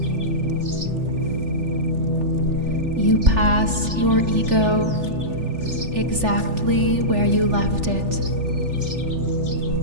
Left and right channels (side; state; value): left; late; 3.4 ms